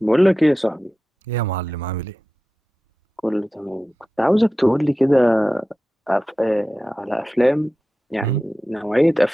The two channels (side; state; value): both; normal; correlation 0.94